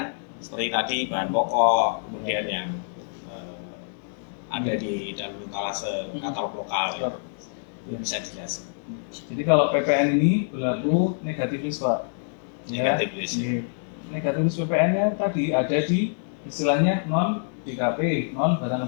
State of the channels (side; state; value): right; silent; digital silence